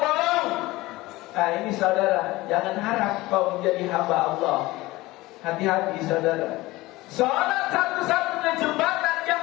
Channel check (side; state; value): right; quieter; 19.5 dB